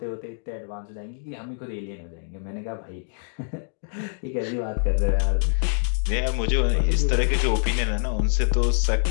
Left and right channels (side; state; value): right; silent; digital silence